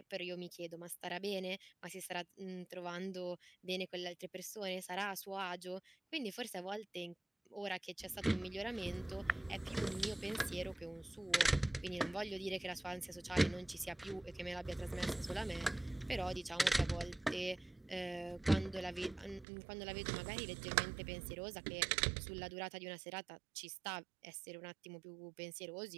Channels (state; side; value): drops out; left; at 19.5 s